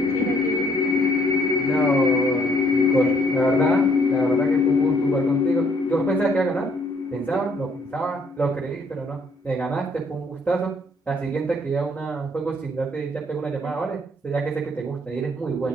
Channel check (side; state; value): both; normal; correlation 0.65